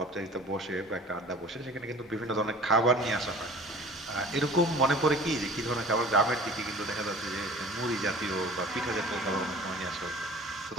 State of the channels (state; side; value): normal; both; correlation 0.44